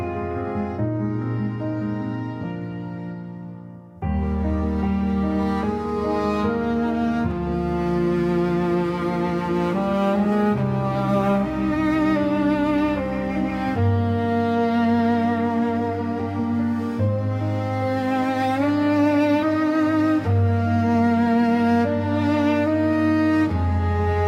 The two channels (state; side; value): identical; both; correlation 1.00